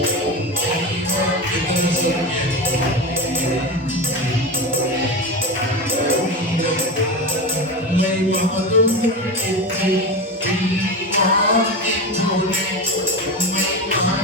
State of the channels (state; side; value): normal; both; correlation 0.23